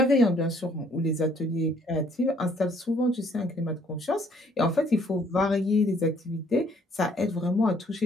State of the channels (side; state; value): both; normal; correlation 0.63